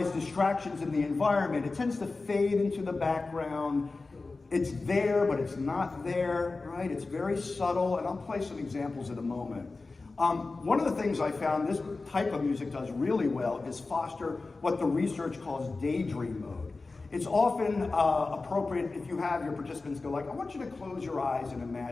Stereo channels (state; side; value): quieter; right; 3.7 dB